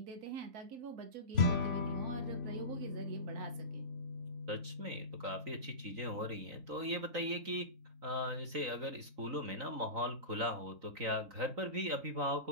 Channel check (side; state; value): left; late; 3.9 ms